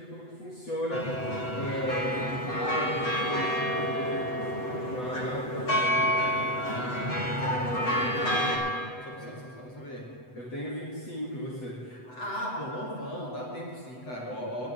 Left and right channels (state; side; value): late; right; 8.0 ms